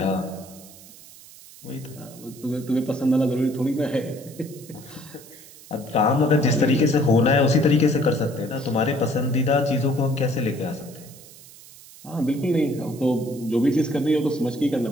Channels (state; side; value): noise; right; hiss, 20 dB below the sound